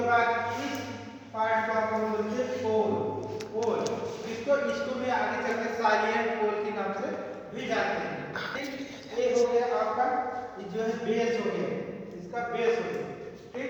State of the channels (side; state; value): both; identical; correlation 1.00